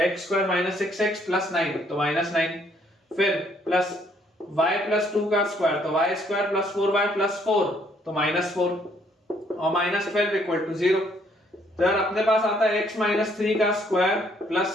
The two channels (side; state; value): both; normal; correlation 0.66